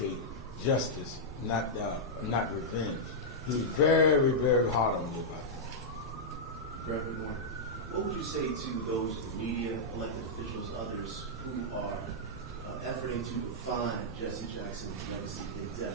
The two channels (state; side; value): normal; both; correlation -0.08